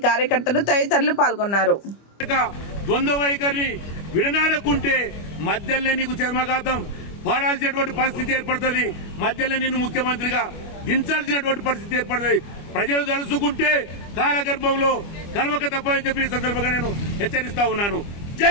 కార్యకర్తలు తదితరులు పాల్గొన్నారు। ద్వంద్వ వైఖరిని విడనాడకుంటే మధ్యలో నీకు చర్మఘాతం పాడాల్సినటువంటి పరిస్థితి ఏర్పడుతుంది, మధ్యలో నిన్ను ముఖ్యమంత్రిగా దించాల్సినటువంటి పరిస్థితి ఏర్పడుతుంది। ప్రజలు తలుసుకుంటే కాలగర్భంలో కలవక తప్పని చెప్పి ఈ సందర్భంగా నేను హెచ్చరిస్తా ఉన్నాను।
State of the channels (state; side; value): late; right; 25 ms